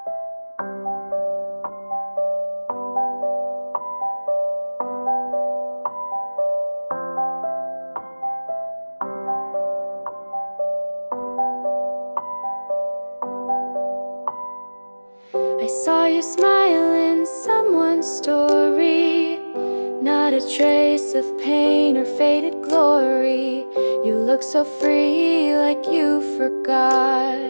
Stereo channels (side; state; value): both; inverted; correlation -1.00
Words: I saw you smile in someone's story, not a trace of pain or faded glory. You look so free, like you forgot